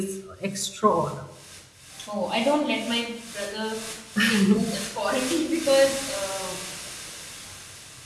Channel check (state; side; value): identical; both; correlation 1.00